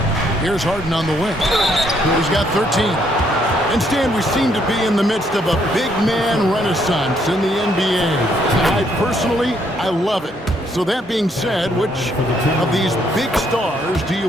Here's Harden on the wing. He's got 13. And Stan, we seem to be in the midst of a big man renaissance in the NBA. I love it. So that being said, which of these big stars do you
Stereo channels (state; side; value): normal; both; correlation 0.70